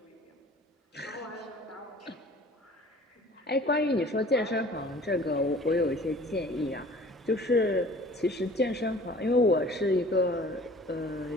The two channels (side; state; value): both; normal; correlation 0.48